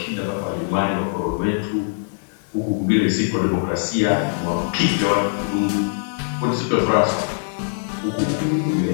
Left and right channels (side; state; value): right; silent; 64 dB below the other